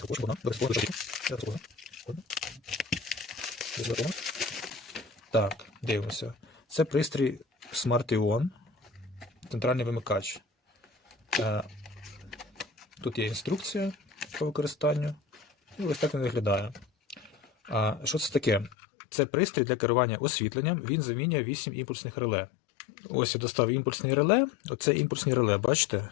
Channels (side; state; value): right; drops out; at 18.8 s